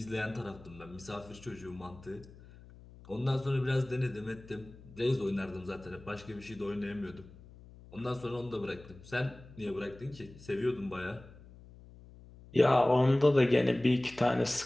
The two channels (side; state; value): left; noise; hum, 20 dB below the sound